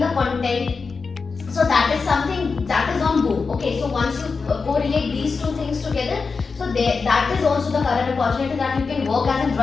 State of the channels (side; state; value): right; quieter; 4.7 dB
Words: content, so that is something that is on boom. Okay, so once you correlate these two things together, so that is also the current opportunity that you can work as a